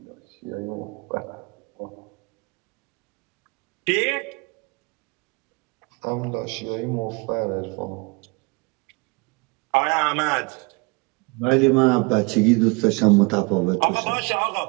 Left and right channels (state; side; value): quieter; left; 29.0 dB